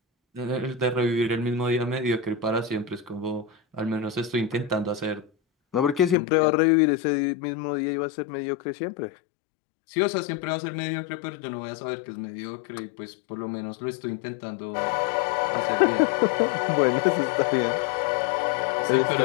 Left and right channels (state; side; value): drops out; right; at 6.2 s